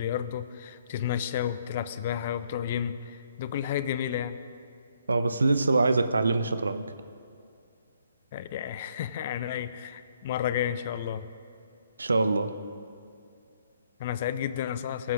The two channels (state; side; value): inverted; both; correlation -0.69